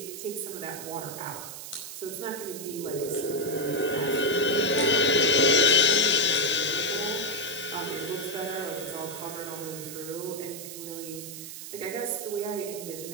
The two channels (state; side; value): noise; right; hiss, 10 dB below the sound